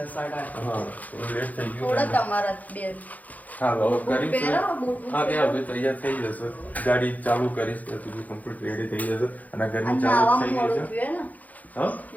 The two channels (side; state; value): right; late; 0.078 ms